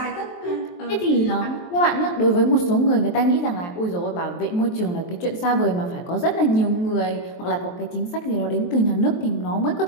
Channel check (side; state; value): right; late; 23 ms